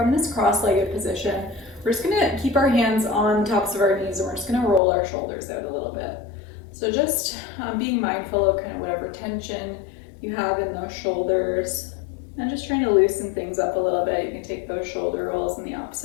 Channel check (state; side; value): drops out; right; at 4.8 s